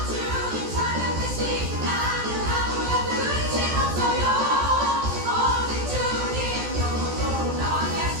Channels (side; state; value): left; late; 14 ms